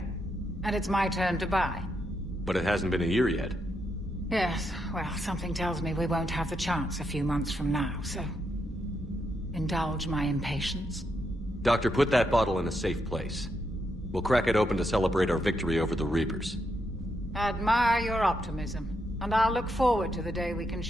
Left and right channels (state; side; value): normal; both; correlation 0.81